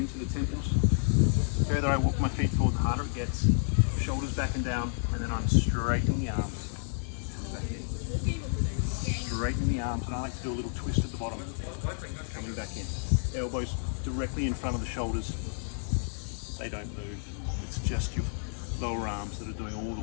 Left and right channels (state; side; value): silent; right; digital silence